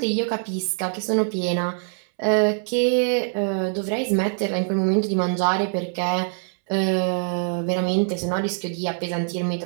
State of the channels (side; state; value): left; silent; 63 dB below the other